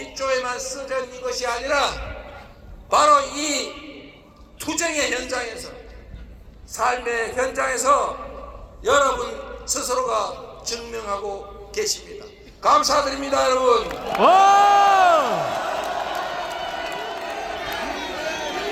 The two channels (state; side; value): identical; both; correlation 1.00